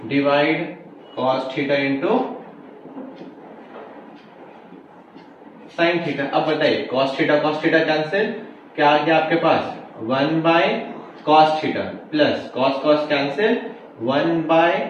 divide cos theta into sine theta. अब बताइए कॉस थीटा कैंसिल, क्या आ गया आपके पास 1 bye cos theta plus cos cos cancel 1 by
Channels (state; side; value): identical; both; correlation 1.00